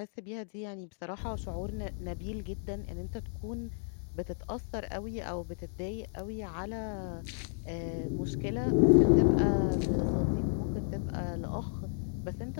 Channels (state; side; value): silent; right; digital silence